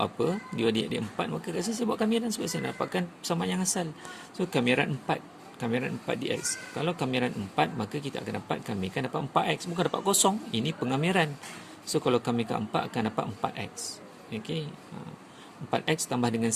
apa? Dy dx dia 4. Maka kat sini saya buat kamiran sebab saya nak dapatkan persamaan yang asal. So kamiran 4 dx. Kalau kamiran 4, maka kita akan dapat, kami akan dapat 4x. Bukan dapat kosong. Ini pengamiran. So kalau kamikan 4 akan dapat 4x. Okey. 4x tambah dengan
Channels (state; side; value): identical; both; correlation 1.00